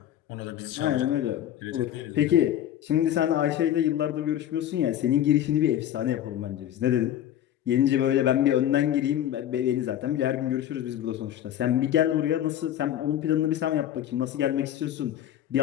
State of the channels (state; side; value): quieter; right; 11.3 dB